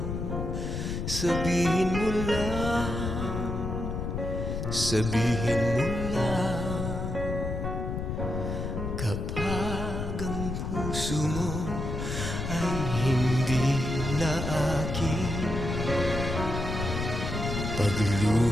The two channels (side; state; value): left; noise; rumble, 3 dB below the sound